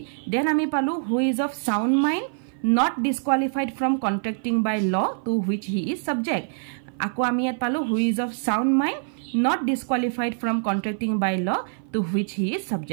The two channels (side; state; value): left; silent; 56 dB below the other